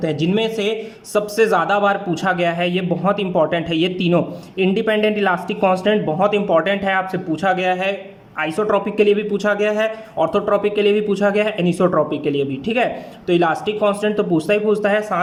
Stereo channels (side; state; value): both; identical; correlation 1.00